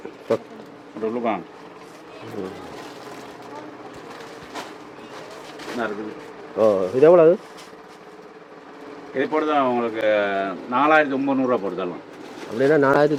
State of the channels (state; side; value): identical; both; correlation 1.00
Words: உள்ளுக்கான் என்ன இருக்குது? இது எவ்வளவு? இது போடுதான் உங்களுக்கு 4900 போடுதலாம். அப்படின்னா